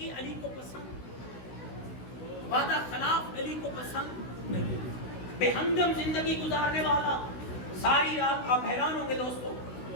علی کو پسند، وعدہ خلاف علی کو پسند نہیں۔ بے ہنگم زندگی گزارنے والا ساری رات آپ حیران ہوں گے دوستو،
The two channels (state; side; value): late; right; 16 ms